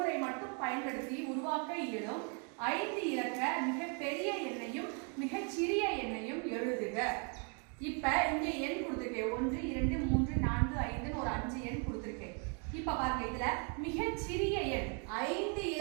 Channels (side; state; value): left; quieter; 37.1 dB